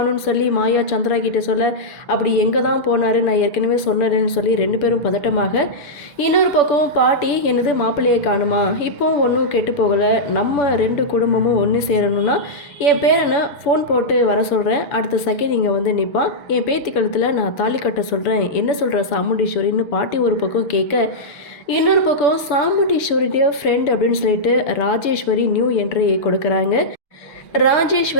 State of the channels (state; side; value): late; right; 6.9 ms